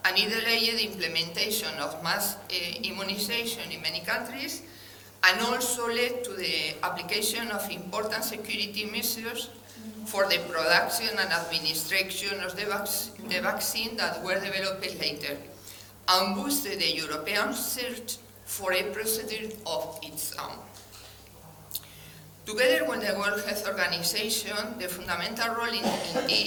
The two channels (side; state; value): both; identical; correlation 1.00